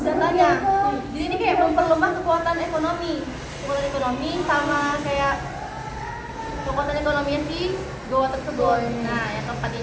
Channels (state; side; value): identical; both; correlation 1.00